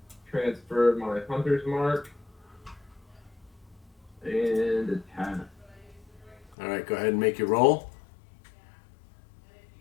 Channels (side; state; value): right; drops out; at 6.6 s